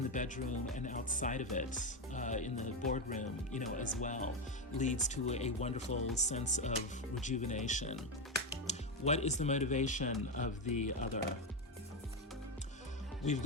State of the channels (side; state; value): both; normal; correlation 0.10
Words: the bedroom and outside of it, in the boardroom, as well, leads to a wonderful sense of rejuvenation. What is the motivation of the other? We've